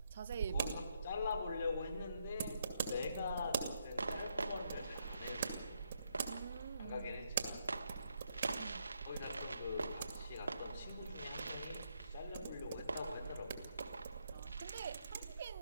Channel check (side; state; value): both; inverted; correlation -0.76